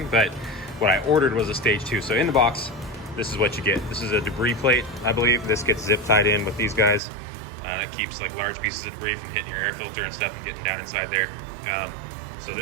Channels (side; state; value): left; drops out; at 7.0 s